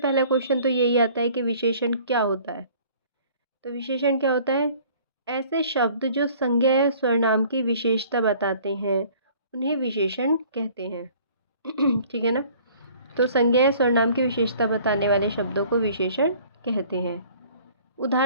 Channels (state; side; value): inverted; both; correlation -0.53